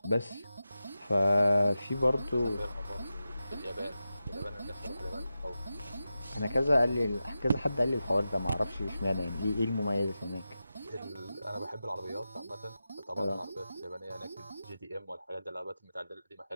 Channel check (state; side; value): inverted; both; correlation -0.92